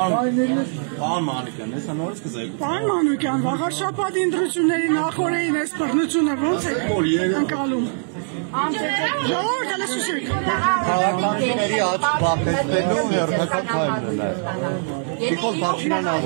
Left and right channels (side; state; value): left; silent; digital silence